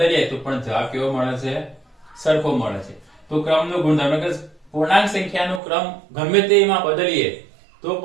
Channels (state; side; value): drops out; left; at 5.6 s